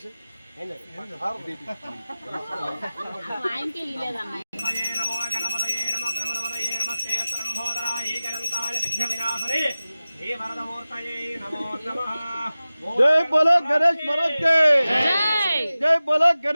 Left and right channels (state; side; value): inverted; both; correlation -0.97